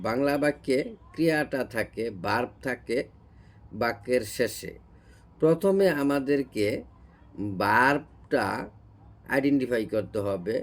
বাক্যে ক্রিয়াটা থাকে, ভার্ব থাকে বাক্যের শেষে। প্রথমে আমাদেরকে ভার্বটা আইডেন্টিফাই করতে হবে।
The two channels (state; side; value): identical; both; correlation 1.00